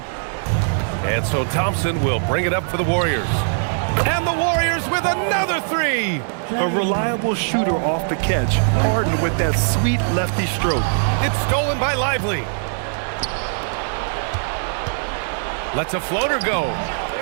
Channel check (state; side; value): silent; left; digital silence